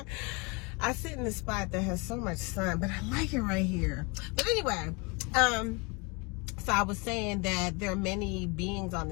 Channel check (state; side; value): quieter; right; 29.5 dB